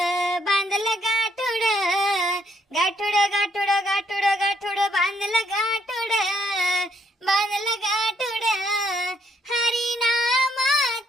बांधलं गाठुड गाठुड गाठुड गाठुड गाठुड बांधलं गाठुड बांधलं गाठुड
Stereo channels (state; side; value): normal; both; correlation 0.72